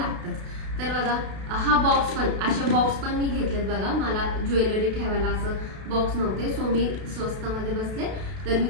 तर बघा हा बॉक्स पण, असे बॉक्स पण मी घेतलेत बघा. मला ज्वेलरी ठेवायला असं बॉक्स नव्हते, सो मी स्वस्तामध्ये बसले तर मी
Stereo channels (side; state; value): left; late; 32 ms